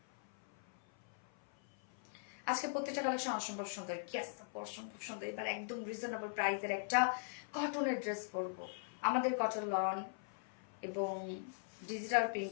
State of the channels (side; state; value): right; silent; 51 dB below the other